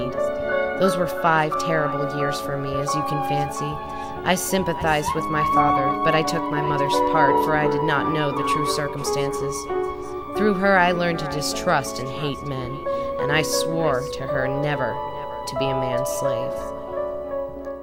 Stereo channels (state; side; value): identical; both; correlation 1.00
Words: Those were 5 terrible years for me, as you can fancy. I sympathized with my father, but I took my mother's part, for I did not know the true circumstances. Through her I learned to distrust and hate men, and I swore to her never to be a man's slave.